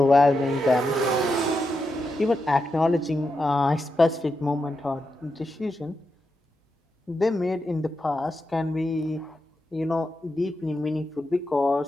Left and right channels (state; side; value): normal; both; correlation 0.86